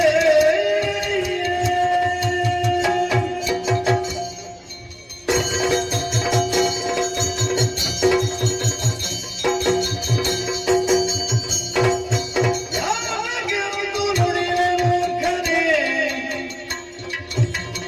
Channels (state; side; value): identical; both; correlation 1.00